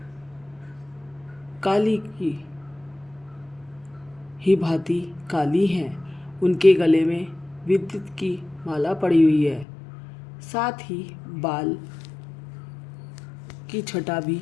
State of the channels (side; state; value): right; drops out; at 9.7 s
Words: काली की ही भांति काली हैं। उनके गले में विद्युत की माला पड़ी हुई है। साथ ही बाल की छटा भी